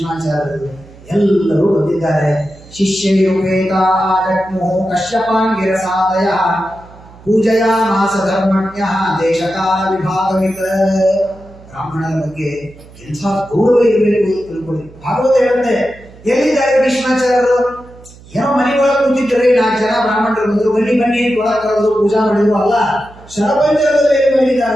ಎಲ್ಲರೂ ಬಂದಿದ್ದಾರೆ. ಶಿಷ್ಯೈರುಪೇತಾ ಜಗ್ಮುಃ ಕಶ್ಯಪಾಂಗಿರಸಾದಯ ಪೂಜಯಾಮಾಸ ಧರ್ಮಣ್ಯಃ ದೇಶಕಾಲ ವಿಭಾಗವಿತ. ಬ್ರಾಹ್ಮಣರ ಬಗ್ಗೆ ಎಂಥ ಗೌರವ ಇರಬೇಕು ಅಂತ ತಿಳ್ಕೊಳ್ಳಿ. ಭಾಗವತ ಹೇಳುತ್ತೆ, ಎಲ್ಲಿದ್ದಾರೆ ಭೀಷ್ಮಾಚಾರ್ಯರು? ಏನೋ ಮನೆಯೊಳಗೆ ಕೂತಿದ್ದರೆ 4 ಜನ ಬ್ರಾಹ್ಮಣರು ಬಂದರು, ಬನ್ನಿ ಬನ್ನಿ ಒಳಗೆ ಕರೆದು ಪೂಜಾ ಮಾಡಿದ್ರು ಅಲ್ಲ, ಶರಪಂಜರದಲ್ಲಿ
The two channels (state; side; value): noise; right; hum, 22 dB below the sound